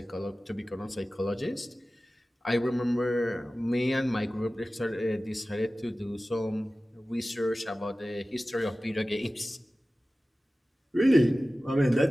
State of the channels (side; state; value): both; normal; correlation 0.96